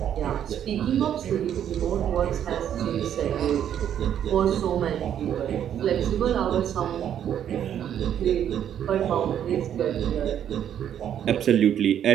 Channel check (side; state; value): left; quieter; 9.8 dB